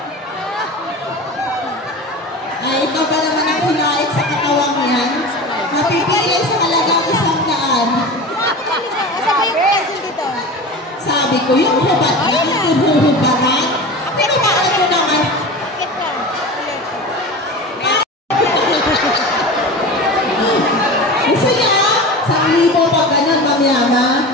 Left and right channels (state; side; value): normal; both; correlation 0.32